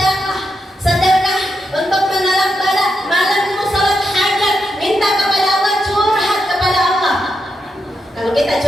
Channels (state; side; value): normal; both; correlation 0.84